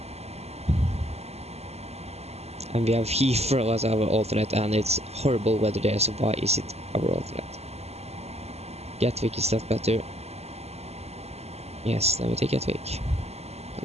And we have Heathrow as our alternate, and it's horrible weather there, so why is it our alternate? Gatwick, is that better? Yes, then we take Gatwick.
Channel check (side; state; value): left; late; 0.30 ms